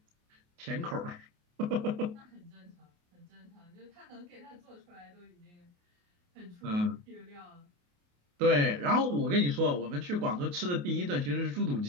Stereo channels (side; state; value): left; late; 28 ms